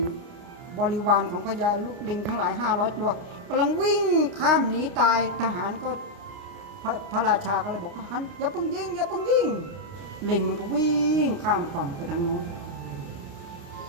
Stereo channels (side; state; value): left; late; 29 ms